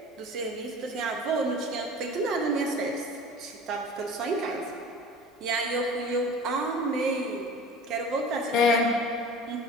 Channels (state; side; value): normal; both; correlation 0.40